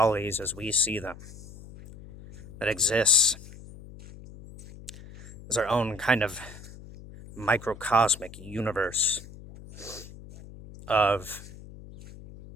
as we see them, that exists as our own kind of microcosmic universe of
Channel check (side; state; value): left; noise; hum, 17 dB below the sound